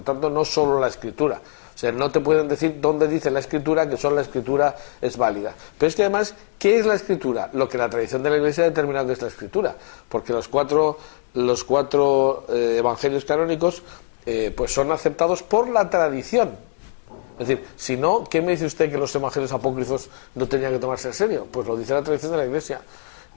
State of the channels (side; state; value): right; silent; 64 dB below the other